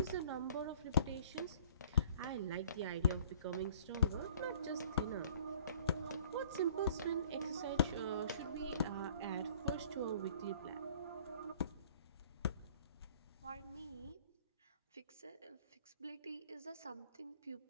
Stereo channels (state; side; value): inverted; both; correlation -0.53